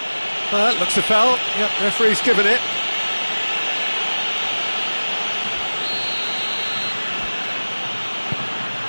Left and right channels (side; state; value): both; inverted; correlation -1.00